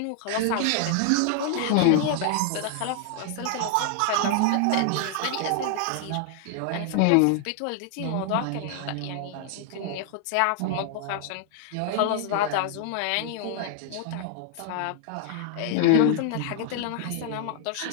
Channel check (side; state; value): both; different; correlation 0.00